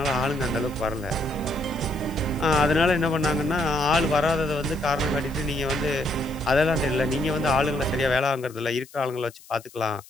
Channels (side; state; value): left; noise; hiss, 22 dB below the sound